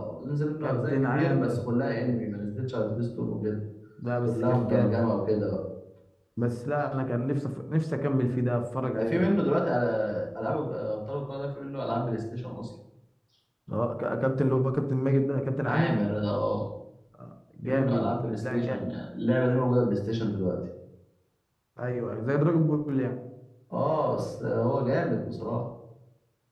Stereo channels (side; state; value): both; identical; correlation 1.00